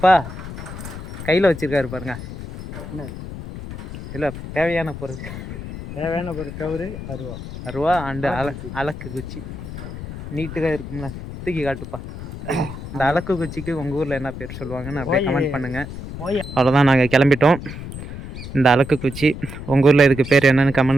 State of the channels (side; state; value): left; noise; rumble, 10 dB below the sound